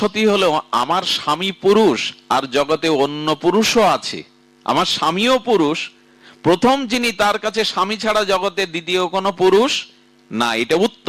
হলো আমার স্বামী পুরুষ আর জগতে অন্য পুরুষও আছে, আমার স্বামীও পুরুষ, প্রথম যিনি, তার কাছে স্বামী ছাড়া জগতে দ্বিতীয় কোনো পুরুষ না, এটা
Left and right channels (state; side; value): identical; both; correlation 1.00